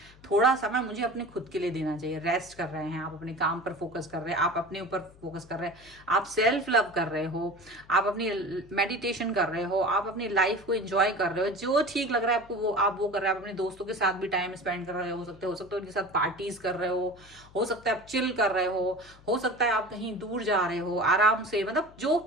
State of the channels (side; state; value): left; noise; hum, 24 dB below the sound